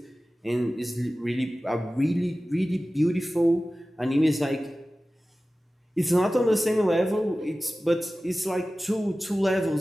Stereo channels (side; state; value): both; normal; correlation 0.96